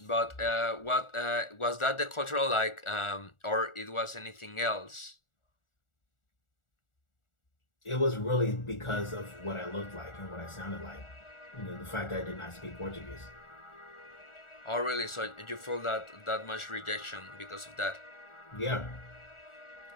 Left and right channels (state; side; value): late; right; 1.4 ms